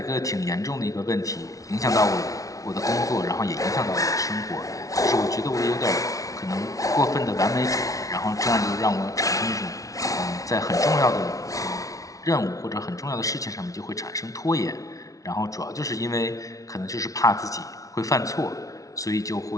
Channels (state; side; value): late; right; 0.17 ms